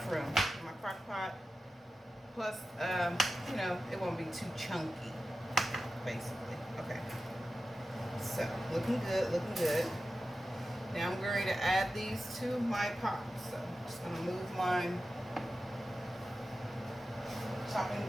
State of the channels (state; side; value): normal; both; correlation 0.93